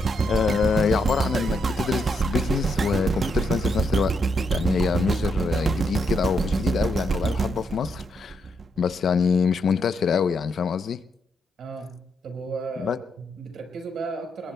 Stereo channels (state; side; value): normal; both; correlation 0.79